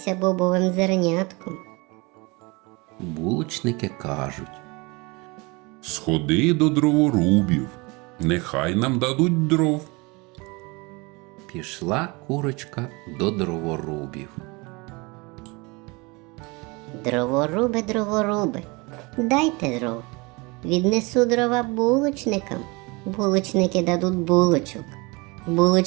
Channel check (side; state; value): left; quieter; 26.5 dB